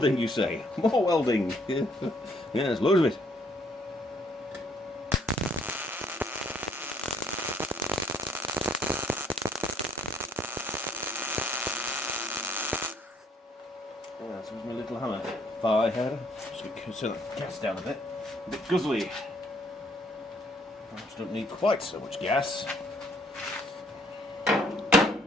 you say? More welding. Yeah, there's loads of it. Yeah, this is my little hammer. Fire header. Just turn that gas down a bit guzzly. Perhaps don't need quite so much gas.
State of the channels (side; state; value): both; normal; correlation 0.65